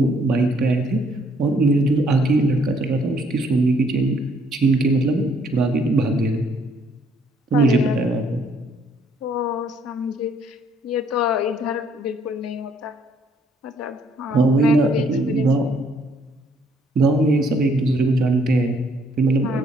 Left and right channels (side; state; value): both; normal; correlation 0.66